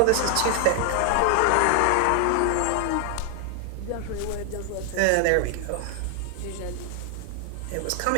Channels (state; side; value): different; both; correlation 0.00